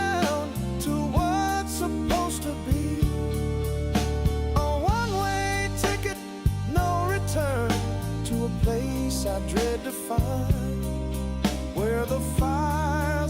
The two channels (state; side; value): identical; both; correlation 1.00